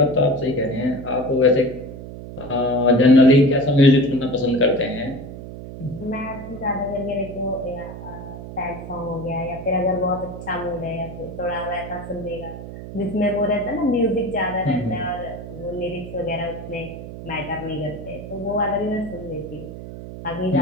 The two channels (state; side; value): noise; right; hum, 11 dB below the sound